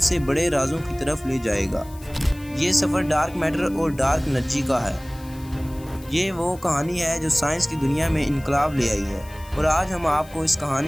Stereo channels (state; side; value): noise; left; hiss, 22 dB below the sound